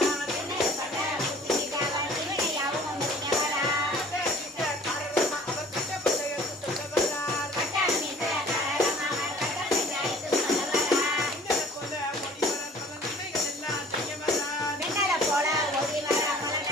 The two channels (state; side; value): normal; both; correlation 0.50